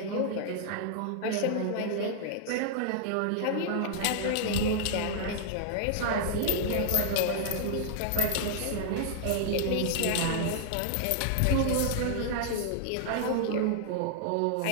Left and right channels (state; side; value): different; both; correlation -0.01